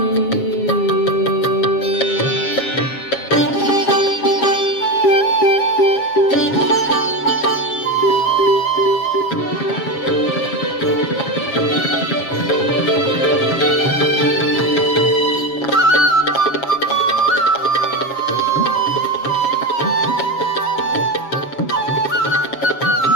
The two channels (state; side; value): late; right; 7.4 ms